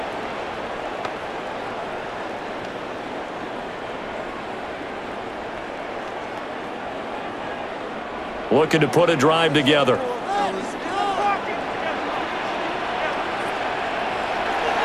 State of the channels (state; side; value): identical; both; correlation 1.00